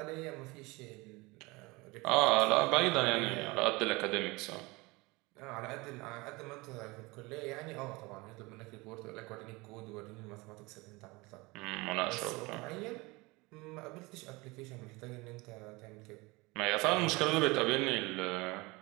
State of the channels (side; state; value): left; quieter; 24.0 dB